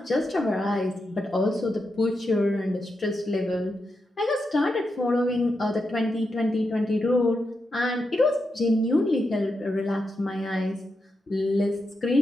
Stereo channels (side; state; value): both; normal; correlation 0.86